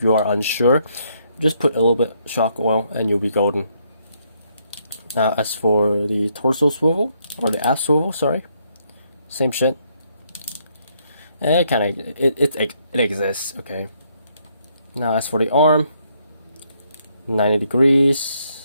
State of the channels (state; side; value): inverted; both; correlation -0.72